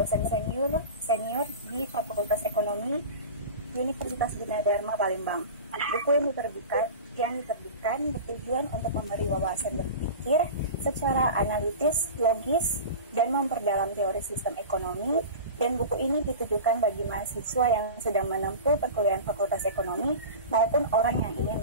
senior di Fakultas Ekonomi Universitas Gunadarma Palembang. Buku yang diterbitkan bertujuan untuk memberi wawasan berpikir secara analitis, logis, dan memperdalam teori sistem ekonomi. Dan buku ini ditujukan bagi mahasiswa yang sedang menempuh perkuliahan Fakultas Ekonomi maupun orang yang ingin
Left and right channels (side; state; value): both; inverted; correlation -0.31